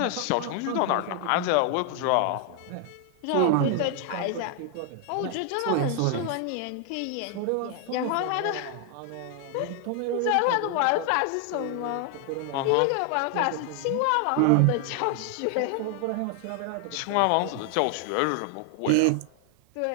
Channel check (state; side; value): different; both; correlation 0.00